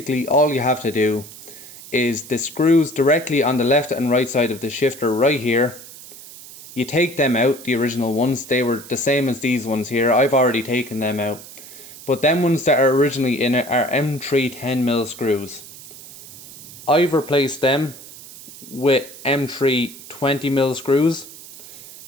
all you have to do is the screws directly on the left and right side of the shifter right here. You take them out, the original ones, they were the same as these ones here. I've already taken them out. But them ones that are originally in it are M3 10mm screws. I've replaced them with M3 20mm screws.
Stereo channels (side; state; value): right; noise; hiss, 17 dB below the sound